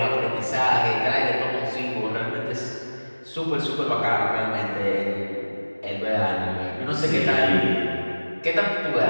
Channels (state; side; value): inverted; both; correlation -1.00